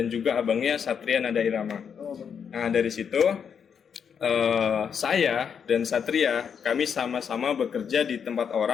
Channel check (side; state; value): right; quieter; 7.2 dB